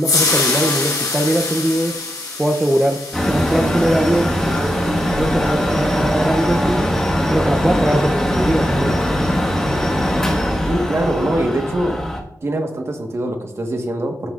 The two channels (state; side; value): normal; both; correlation 0.85